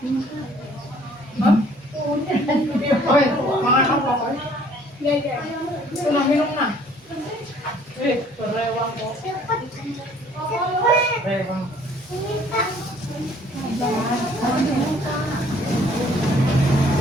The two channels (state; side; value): normal; both; correlation 0.58